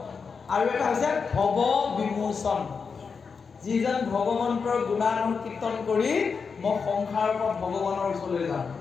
আৰু এটা হৈছে ভৱ বিমোচন, যিজন ভগৱন্তৰ গুণানুকীৰ্তন কৰি মই সংসাৰৰ পৰা ভগৱানৰ ওচৰলৈ যাম।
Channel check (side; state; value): right; quieter; 5.4 dB